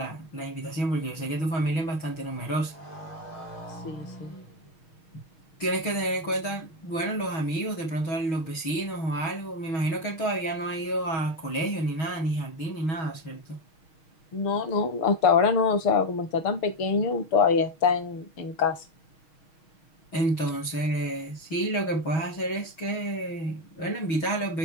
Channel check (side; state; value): right; late; 6.3 ms